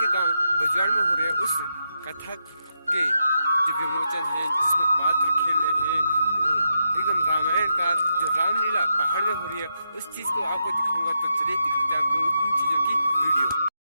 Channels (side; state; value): both; inverted; correlation -0.84